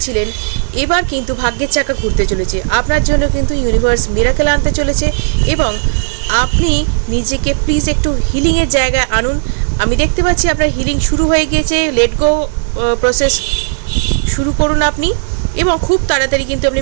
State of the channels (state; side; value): silent; left; digital silence